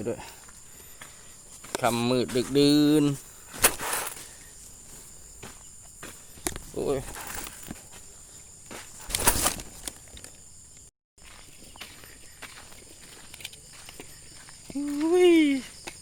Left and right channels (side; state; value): both; identical; correlation 1.00